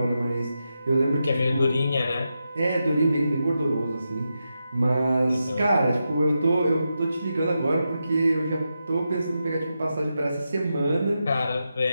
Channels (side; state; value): both; inverted; correlation -0.88